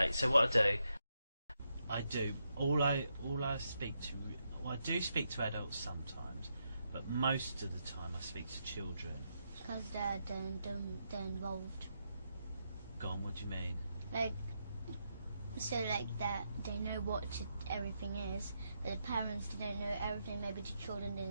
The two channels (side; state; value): both; inverted; correlation -0.82